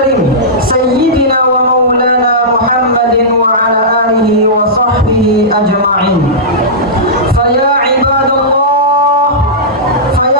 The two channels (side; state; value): both; normal; correlation -0.14